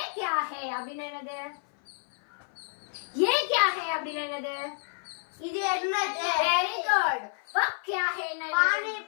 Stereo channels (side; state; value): right; silent; 56 dB below the other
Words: क्या है அப்படினா என்னது? ये क्या है அப்படினா என்னது? இது என்னது? Very good. वह क्या है ना? पानी